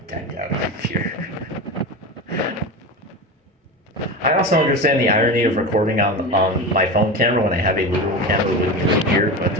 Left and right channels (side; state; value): both; normal; correlation 0.24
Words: decked out up here. I also understand the irony of recording on my phone camera when I have a literal camera with me right here, but